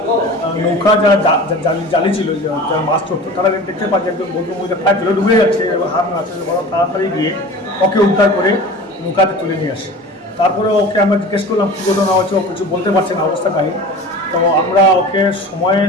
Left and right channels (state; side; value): normal; both; correlation 0.37